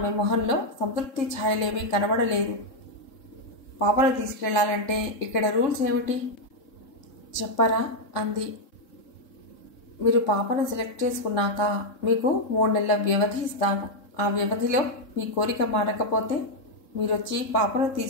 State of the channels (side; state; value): right; late; 3.7 ms